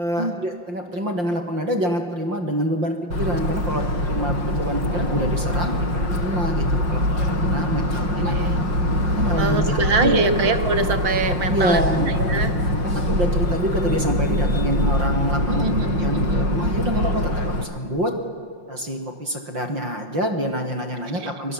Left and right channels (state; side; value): late; left; 5.7 ms